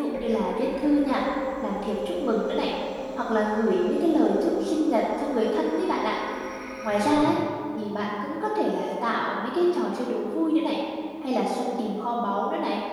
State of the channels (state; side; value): identical; both; correlation 1.00